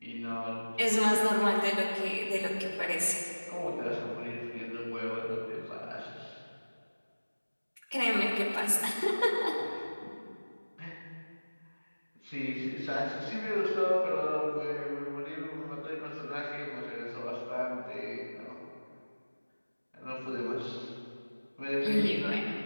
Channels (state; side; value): inverted; both; correlation -1.00